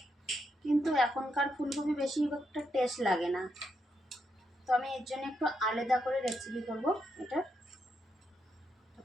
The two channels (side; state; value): both; normal; correlation 0.80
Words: কিন্তু এখনকার ফুলকপি বেশি একটা টেস্ট লাগে না। তো আমি এর জন্য একটু আলাদা করে রেসিপি করবো এটা। তো